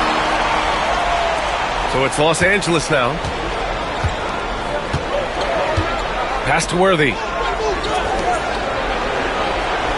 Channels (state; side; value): identical; both; correlation 1.00